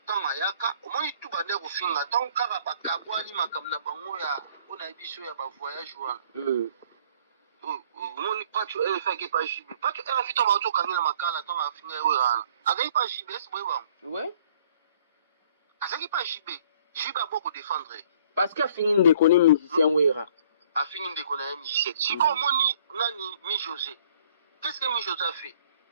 temps ayaka omoni tout bande ko finga tant kaka bakabwani makamna bango ya ona biso ya ba voyage wana. Omoni pacho fait que pas JB pacho elle fit tomba to kamina makala tant afinga wera agai pas JB c'est bon. Ouais. Azaki pas JB a beaucoup défendre. Parce qu'a fini de connaître musicien wera. A fini de connaître musicien. Si comme moni nani mi José. Qu'est-ce que mi José a fait?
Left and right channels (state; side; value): inverted; both; correlation -0.57